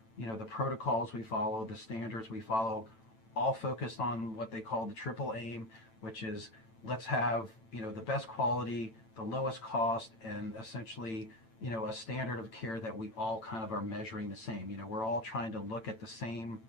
the protocols we follow, the standards we follow, all focused on what they call the triple aim, which is let's have, the best quality, the lowest cost, and essentially, a standard of care that we all kind of are measuring the same. We're all trying to look at the same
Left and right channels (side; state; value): right; late; 9.0 ms